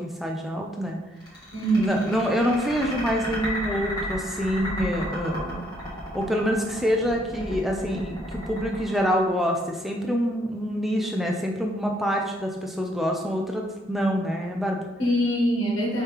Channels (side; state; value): both; normal; correlation 0.70